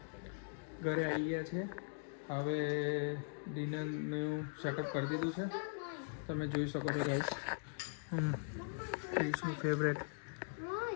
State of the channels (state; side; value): silent; right; digital silence